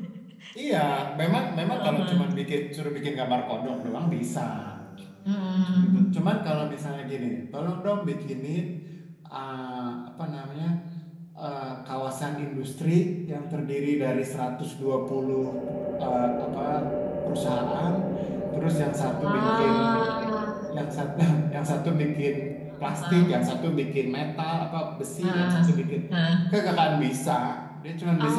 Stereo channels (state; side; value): identical; both; correlation 1.00